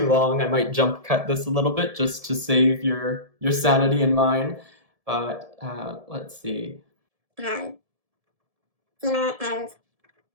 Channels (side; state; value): left; late; 1.7 ms